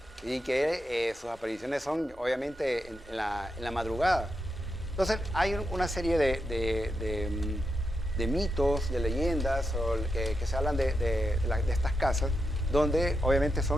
Y que sus apariciones son obviamente en la madrugada. Entonces hay una serie de mitos, de leyendas que se hablan de estas casas, donde obviamente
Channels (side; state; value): both; normal; correlation 0.85